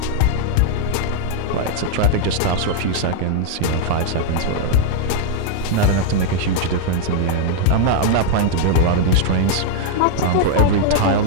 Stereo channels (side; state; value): both; different; correlation 0.00